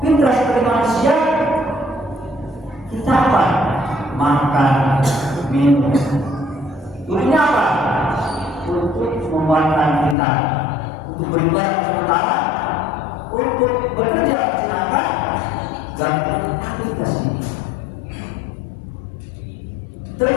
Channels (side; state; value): right; drops out; at 10.2 s